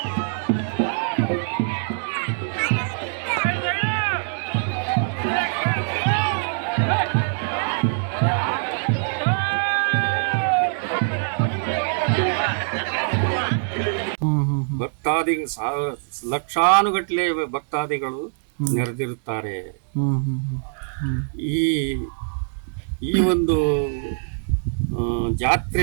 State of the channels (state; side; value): silent; left; digital silence